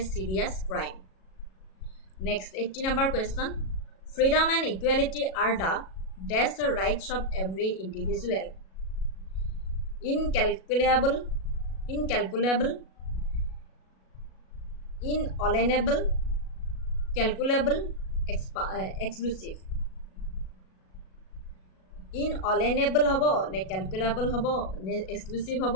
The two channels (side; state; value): right; late; 37 ms